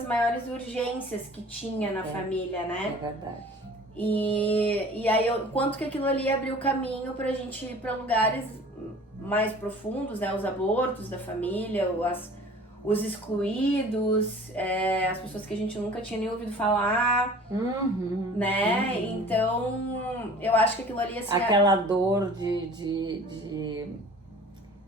maiores urgências que tinha na família, né? É verdade. E aí, quanto que aquilo ali abriu caminho pra gente ir pra lugares mais profundos, né? Os abortos da família, os excluídos, as pessoas que a gente nunca tinha nem ouvido falar, né? Então, eu acho que aquilo ali, assim... Aquela dor de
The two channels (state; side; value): normal; both; correlation 0.46